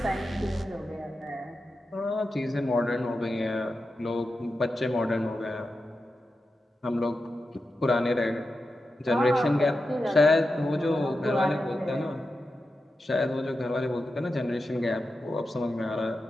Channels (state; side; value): normal; both; correlation 0.90